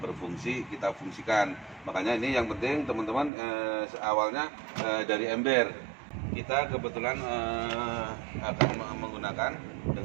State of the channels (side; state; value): left; drops out; at 3.3 s